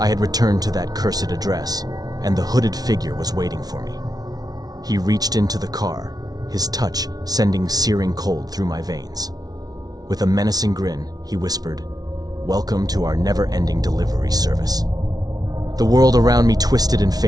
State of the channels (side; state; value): left; late; 0.19 ms